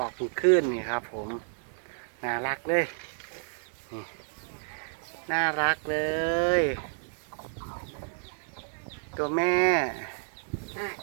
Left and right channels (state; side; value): silent; left; digital silence